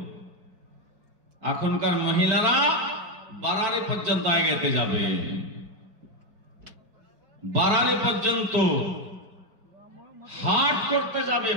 এখনকার মহিলারা বারারি পর্যন্ত এগোতে যাবে, বারারি পর্যন্ত হাট করতে যাবে,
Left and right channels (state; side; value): late; left; 4.5 ms